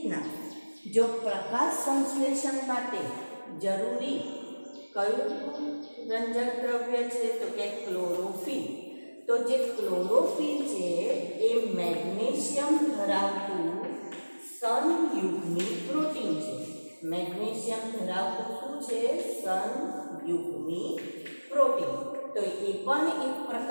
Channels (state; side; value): inverted; both; correlation -1.00